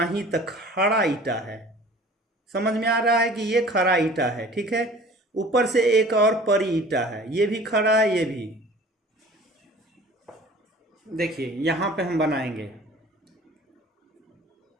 ही तक खड़ा ईटा है, समझ में आ रहा है कि ये खड़ा ईटा है, ठीक है। ऊपर से एक और परी ईटा है, ये भी खड़ा है, ये भी। देखिए यहां पे हम बनाएंगे,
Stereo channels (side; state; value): both; normal; correlation 0.46